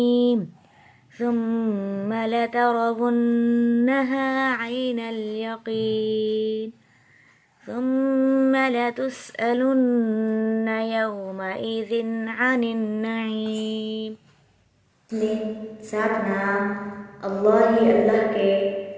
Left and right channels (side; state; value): both; identical; correlation 1.00